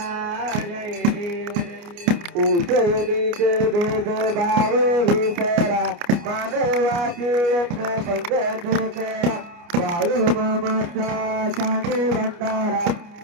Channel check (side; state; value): left; late; 29 ms